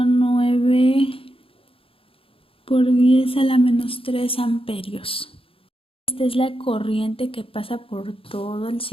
por 10 a la menos 3 amperios. Esta es la corriente que pasa por todo el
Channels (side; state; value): right; late; 0.27 ms